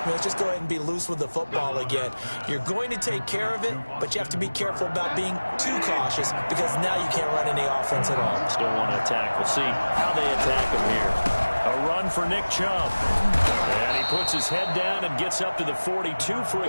me. Let's just go ahead and be loose with the football again. You're going to take care of it, but you have to be careful about being too cautious because now you can't run any offense at all. Still want to attack. We'll see how they attack him here. A run for Nick Chubb. And he puts his head down and gets up to the 42 for a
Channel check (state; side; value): inverted; both; correlation -1.00